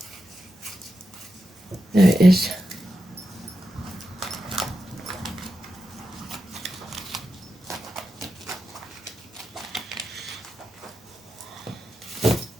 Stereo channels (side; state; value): both; normal; correlation 0.89